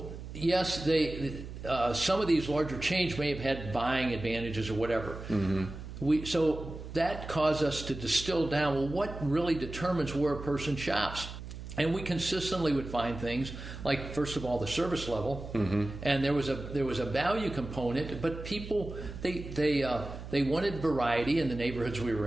yes, some of these larger chains may have had buying advantages or whatever. Mm-hmm. So that caused us to distill down, what really determines where a person shops? And we consistently would find things like, first of all, the service level, and there was a value component. But people they wanted variety in the neighborhoods we were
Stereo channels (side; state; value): right; noise; hum, 10 dB below the sound